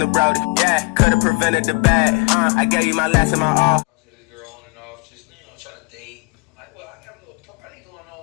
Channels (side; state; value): right; quieter; 30.8 dB